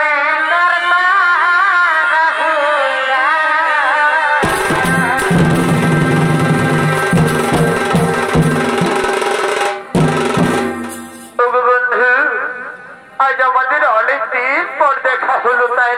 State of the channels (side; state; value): both; identical; correlation 1.00